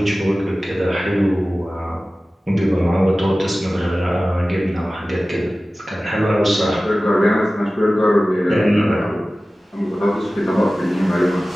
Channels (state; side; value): normal; both; correlation 0.96